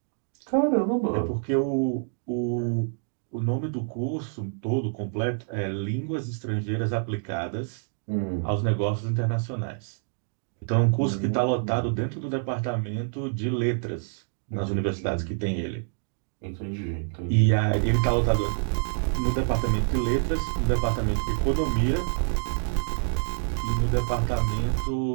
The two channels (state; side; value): silent; left; digital silence